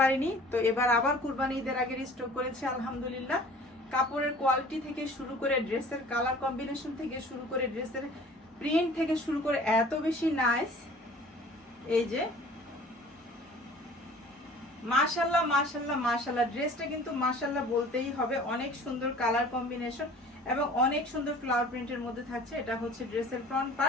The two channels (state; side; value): normal; both; correlation 0.47